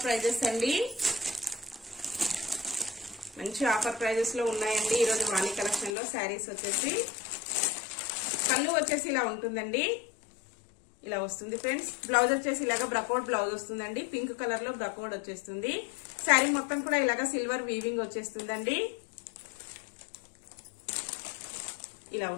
ప్రైజెస్ అండి, మంచి ఆఫర్ ప్రైజెస్ లో ఉన్నాయండి ఈరోజు వాణి కలెక్షన్ లో. శారీస్ వచ్చేసి పళ్ళు వచ్చేసి ఇలా ఉంటుందండి, ఇలా వస్తుంది ఫ్రెండ్స్. బ్లౌజ్ వచ్చేసి ఇలాగా బ్రకౌట్ బ్లౌజ్ వస్తుందండి, పింక్ కలర్ లో బ్రకౌట్ వచ్చేస్తుంది. శారీ మొత్తం కూడా ఇలాగా సిల్వర్ వీవింగ్ వచ్చేస్తుందండి, ఇలా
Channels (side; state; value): right; drops out; at 6.0 s